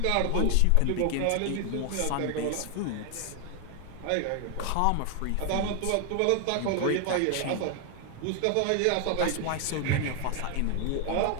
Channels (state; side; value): different; both; correlation 0.00